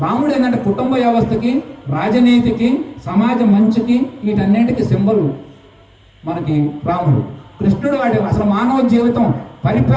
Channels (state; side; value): identical; both; correlation 1.00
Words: రాముడు ఏంటంటే కుటుంబ వ్యవస్థకి, రాజనీతికి, సమాజ మంచికి, వీటన్నింటికి సింబల్ మనకి రాముడు. కృష్ణుడు వాటి అసలు మానవ జీవితం